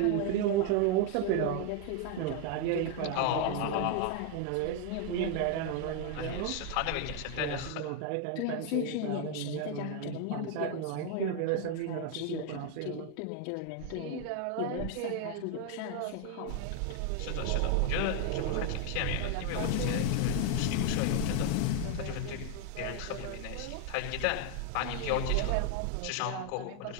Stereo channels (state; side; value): different; both; correlation 0.00